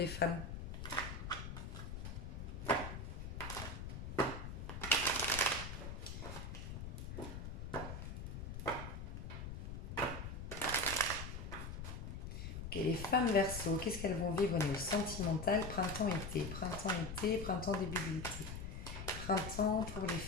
femmes. Ok, les femmes Verseau, qu'est-ce qu'elles vont vivre au niveau sentimental? Printemps-été, printemps-été, printemps début d'été. Printemps pour les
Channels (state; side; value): noise; left; rumble, 7 dB below the sound